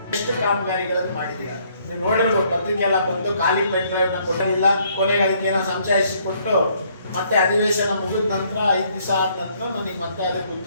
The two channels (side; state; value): both; inverted; correlation -0.66